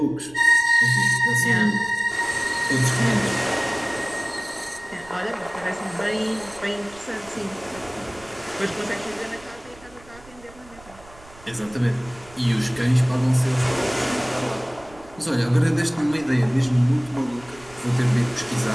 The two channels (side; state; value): right; noise; rumble, 23 dB below the sound